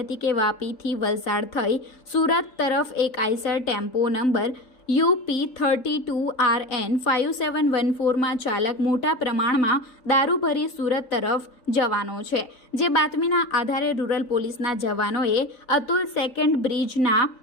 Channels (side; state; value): right; late; 3.9 ms